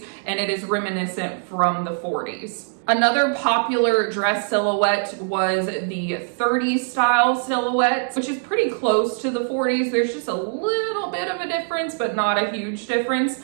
and it is reminiscent from the 40s. Another popular dress silhouette was the 30s style silhouette, which is pretty close to the 40s. There's just a little bit of a difference, but not a huge difference.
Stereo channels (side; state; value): left; silent; 60 dB below the other